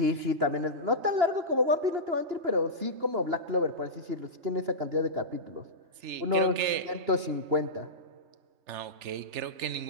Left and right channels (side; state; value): left; late; 2.9 ms